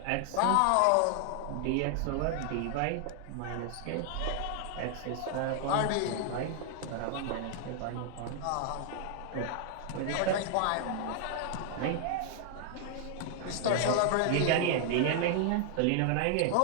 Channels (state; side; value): different; both; correlation 0.00